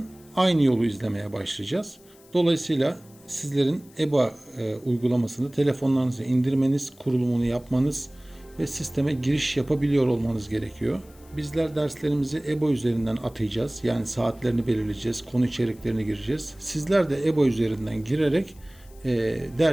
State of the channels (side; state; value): left; noise; hiss, 27 dB below the sound